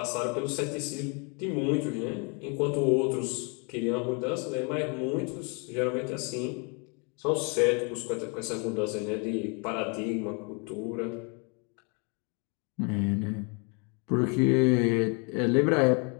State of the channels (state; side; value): quieter; right; 34.2 dB